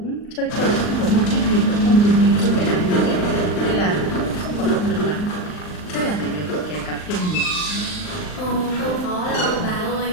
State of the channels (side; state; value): right; late; 39 ms